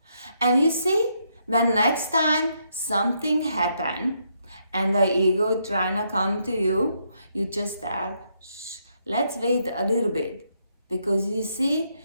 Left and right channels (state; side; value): inverted; both; correlation -0.76